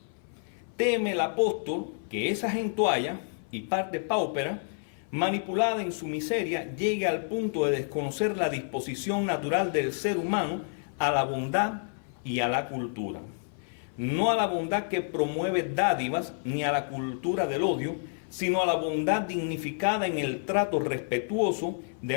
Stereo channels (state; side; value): silent; right; 57 dB below the other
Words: Teme el apóstol que esa gentualla y parte paupera, manipulada en su miseria, llegue al punto de desconocer la disposición natural del ser humano a la bondad y a la cultura. No a la bondad que promueve dádivas ni a la cultura del odio, sino a la bondad dignificada en el trato respetuoso